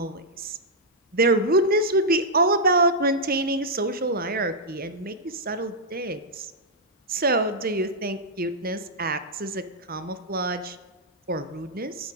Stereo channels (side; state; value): both; normal; correlation -0.06